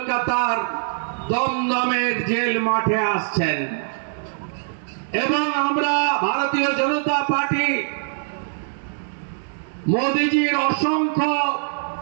দমদমের জেল মাঠে আসছেন এবং আমরা ভারতীয় জনতা পার্টি মোদীজির অসংখ্য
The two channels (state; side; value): silent; left; digital silence